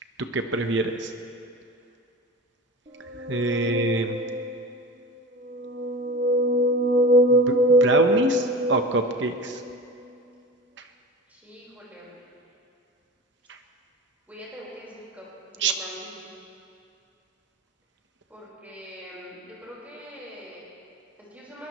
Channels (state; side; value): normal; both; correlation 0.32